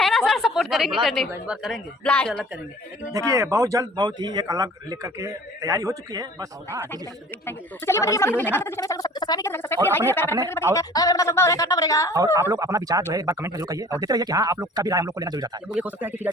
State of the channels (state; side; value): normal; both; correlation 0.48